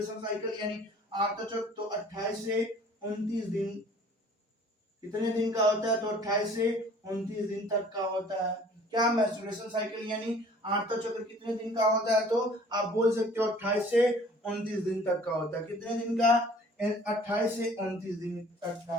साइकिल यानी आर्तव चक्र, तो 28 से 29 दिन। कितने दिन का होता है, तो 28 से 29 दिन तक का होता है। क्या, मेंस्ट्रुएशन साइकिल यानी आर्तव चक्र कितने दिन का होता है, तो आप बोल सकते हो 28 से 29 दिन तक का होता है। कितने दिन का, 28 से 29 दिन तक का।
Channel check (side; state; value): both; normal; correlation 0.52